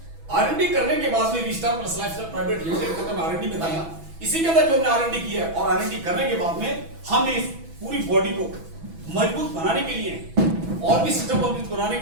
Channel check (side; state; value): left; late; 6.1 ms